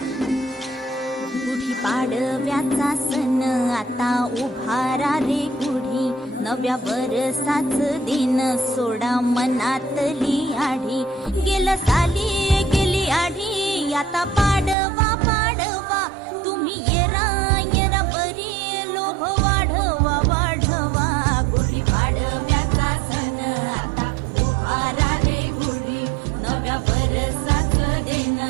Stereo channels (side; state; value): left; drops out; at 14.8 s